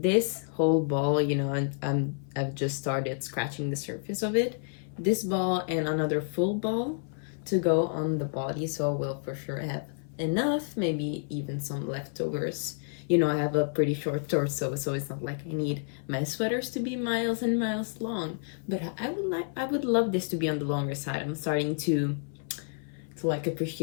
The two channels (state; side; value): silent; right; 58 dB below the other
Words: whole ball, you know, and I've just started scratching the surface of it. This ball and another full ball to go on the body, so I will for sure have enough, maybe even some leftovers. You know, I have a pretty short torso, so it's not like I need my sweaters to be miles and miles long, but I would love this to be on the longer side. I'm starting to like